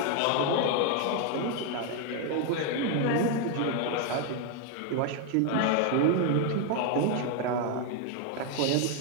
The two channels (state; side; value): different; both; correlation 0.00